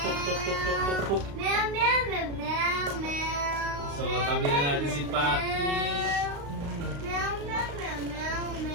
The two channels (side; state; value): left; late; 35 ms